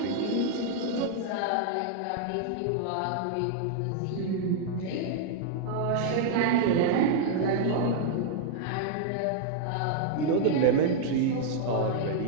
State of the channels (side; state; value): both; different; correlation -0.01